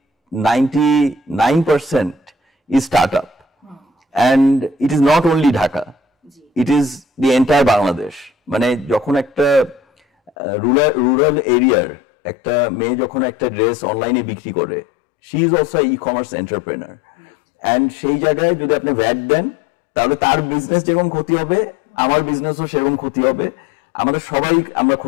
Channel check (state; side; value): drops out; right; at 10.3 s